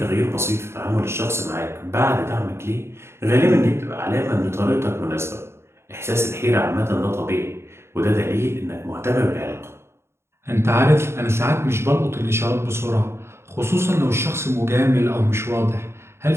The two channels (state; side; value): late; left; 0.12 ms